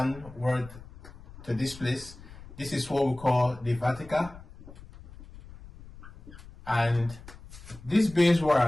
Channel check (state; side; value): noise; left; rumble, 18 dB below the sound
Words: to this place. This is what we call the vertical. And this base